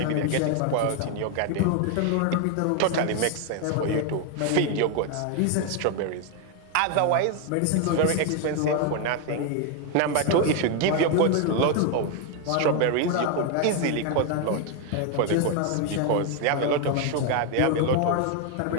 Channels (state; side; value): different; both; correlation 0.01